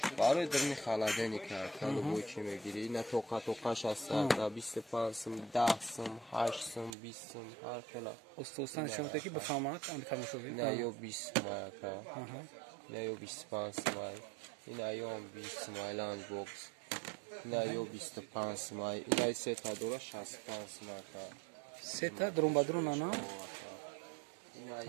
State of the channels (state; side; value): drops out; left; at 7.0 s